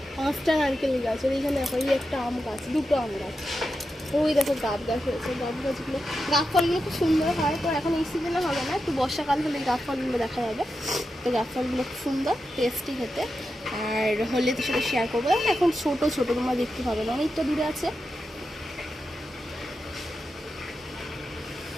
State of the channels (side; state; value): both; normal; correlation 0.89